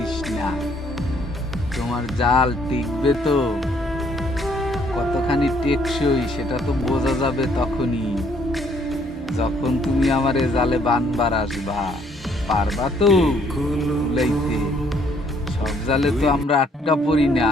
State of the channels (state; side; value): normal; both; correlation 0.66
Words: না। তোমার জাল টিকবে তো, কতখানি টেকসই সেটা তো বোঝা যাবে তখনই, যখন তুমি আমারে জালে বানবার আসবা। পারবা তো কুলাইতে? সব জালে তো আমরা আটকা পড়ি না।